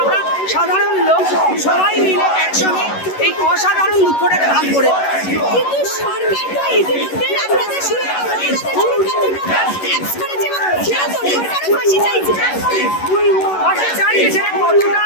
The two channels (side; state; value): right; late; 11 ms